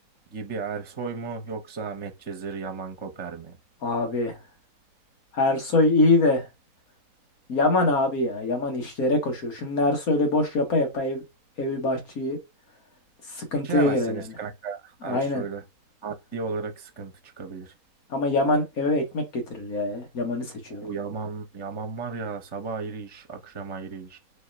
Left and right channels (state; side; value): late; right; 4.3 ms